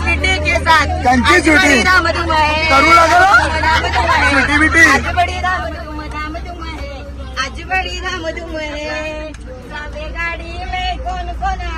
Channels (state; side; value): identical; both; correlation 1.00